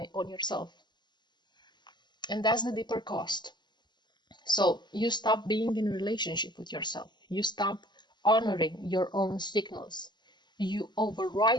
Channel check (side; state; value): right; late; 0.21 ms